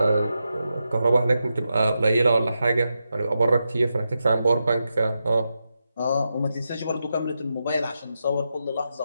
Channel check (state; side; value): inverted; both; correlation -0.88